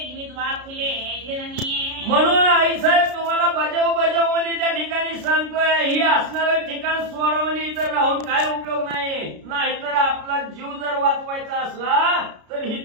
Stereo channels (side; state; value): left; late; 33 ms